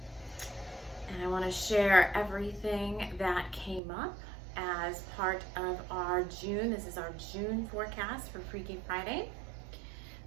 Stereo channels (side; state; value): left; drops out; at 3.8 s